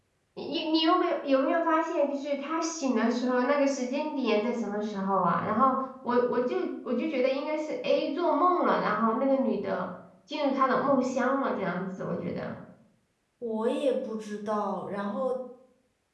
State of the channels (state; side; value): identical; both; correlation 1.00